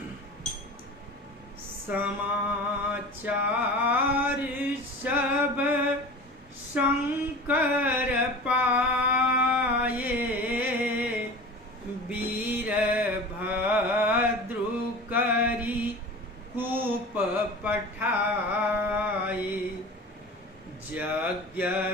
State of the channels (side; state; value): both; normal; correlation 0.36